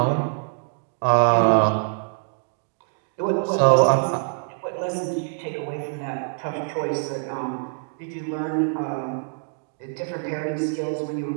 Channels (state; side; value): silent; left; digital silence